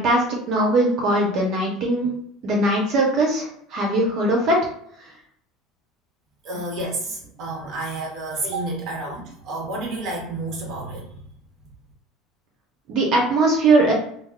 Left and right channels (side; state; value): both; normal; correlation 0.43